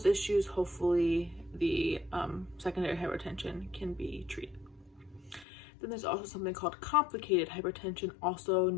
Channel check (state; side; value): drops out; right; at 5.5 s